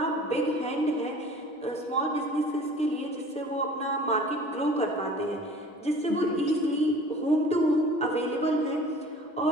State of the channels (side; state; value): both; normal; correlation 0.46